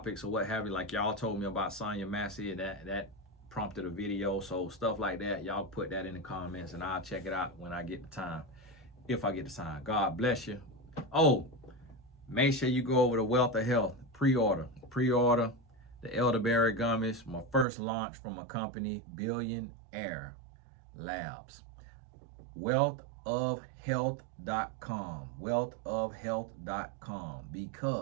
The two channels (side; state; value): left; drops out; at 17.7 s